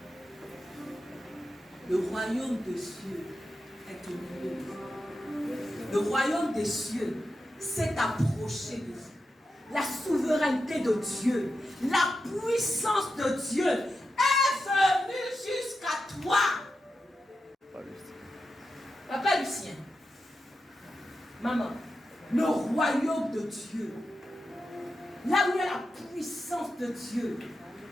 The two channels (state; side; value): normal; both; correlation 0.89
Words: Le royaume des cieux est au milieu de vous. Le royaume des cieux s'est approché de vous. La souveraineté de Dieu, la puissance de Dieu est venue jusqu'à toi. Papa Lucien, maman, le royaume de Dieu, là où il y a la puissance de Dieu,